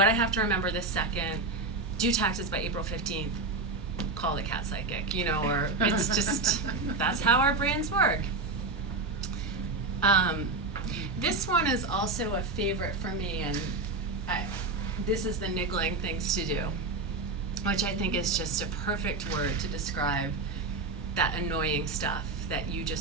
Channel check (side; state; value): left; quieter; 3.6 dB